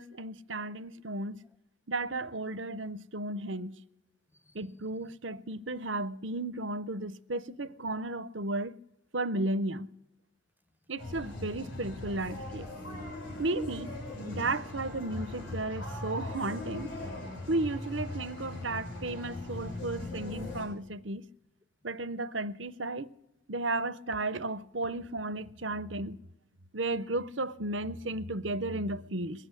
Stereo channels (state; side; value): normal; both; correlation 0.07